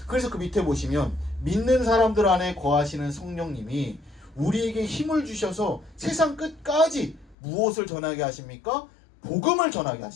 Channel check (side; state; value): right; drops out; at 7.4 s